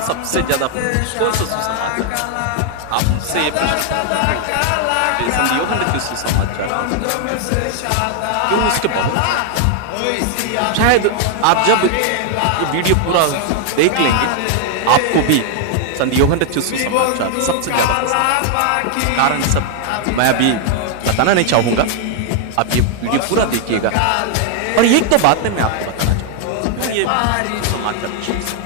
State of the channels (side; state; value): both; different; correlation 0.00